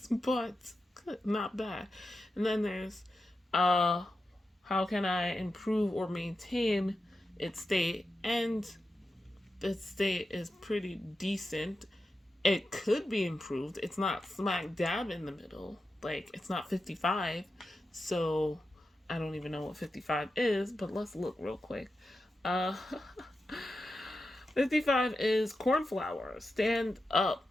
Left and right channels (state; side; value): normal; both; correlation 0.90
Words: but not bad. And then there's how can I improve or maintain its state? And its state is pretty decent. It could be improved. It's not smack dab in the middle. Like, it's not 55. So I don't even know what 55 is, but let's look real quick. Uh 55 is cornflower. Stand up